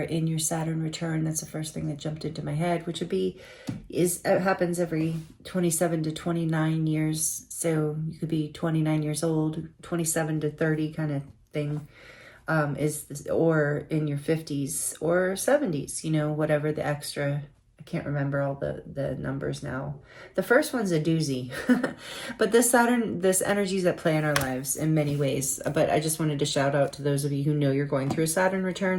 in your Saturn return. That's the first thing that jumped into my head, which would be, it happens every 27 to 29 years. So you could be 29 years old, 27 to 30 kind of thing. Or in your 50s or 70s, you know, whatever the extra, I can't remember all the numbers now. The first one's a doozy, but this energy is at play in our lives in many ways. But I just wanted to shout out to those of you who know you're going through a Saturn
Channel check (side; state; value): both; identical; correlation 1.00